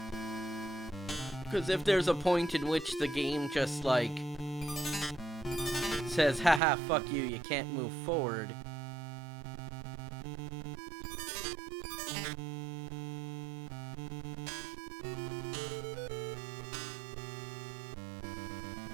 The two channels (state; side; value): drops out; left; at 6.6 s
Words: Because if there's a point in which the game just, like, says, haha, fuck you, you can't move forward.